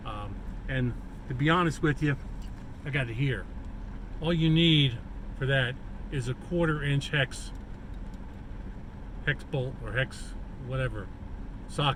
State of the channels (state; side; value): identical; both; correlation 1.00